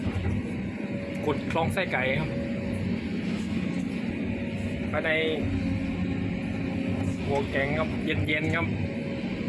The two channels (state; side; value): identical; both; correlation 1.00